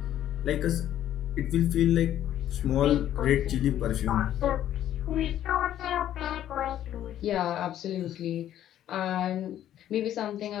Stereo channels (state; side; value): quieter; right; 11.6 dB